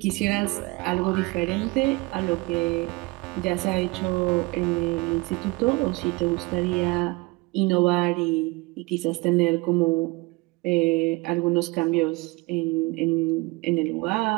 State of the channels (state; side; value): quieter; left; 24.5 dB